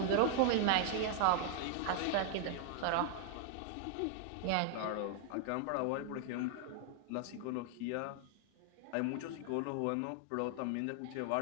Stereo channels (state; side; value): different; both; correlation 0.00